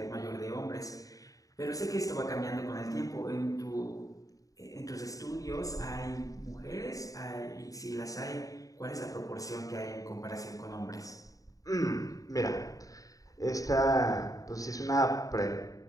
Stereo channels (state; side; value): late; right; 0.17 ms